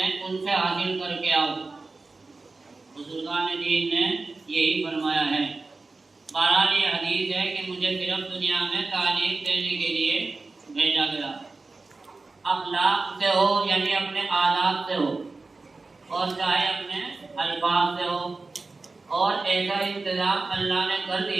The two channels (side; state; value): left; quieter; 3.7 dB